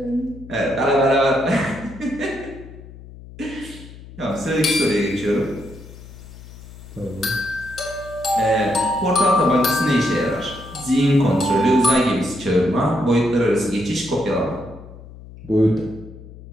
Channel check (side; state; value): left; noise; hum, 17 dB below the sound